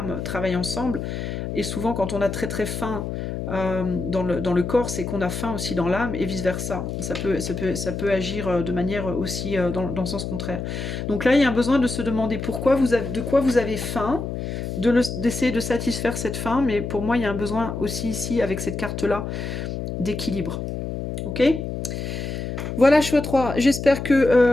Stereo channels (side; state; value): left; noise; hum, 5 dB below the sound